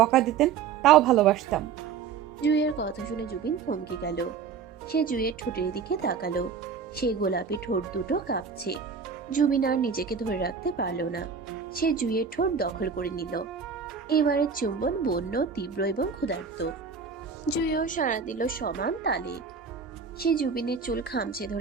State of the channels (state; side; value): quieter; left; 6.2 dB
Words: দিতেন তাও ভালোবাসতাম। জুইয়ের কথা শুনে জুবিন থমকে গেল। সে জুইয়ের ঠোঁটের দিকে তাকালো। সেই গোলাপি ঠোঁট দুটো কাঁপছে। জুবিন আর নিজেকে ধরে রাখতে পারল না। সে জুইয়ের ঠোঁট দখল করে নিল। এবারের চুম্বন বন্য, তীব্র এবং ক্ষুধার্ত। জুইও সাড়া দিল সমান তালে। সে জুবিনের চুল খামচে